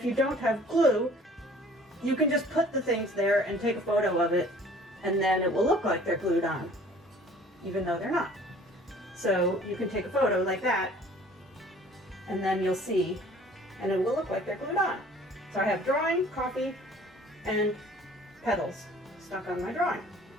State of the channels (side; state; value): both; normal; correlation 0.51